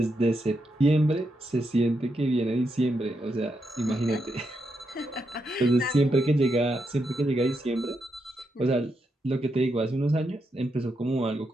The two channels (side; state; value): both; normal; correlation 0.83